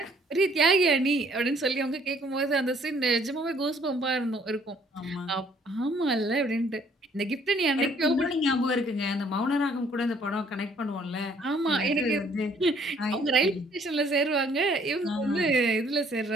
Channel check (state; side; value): normal; both; correlation 0.62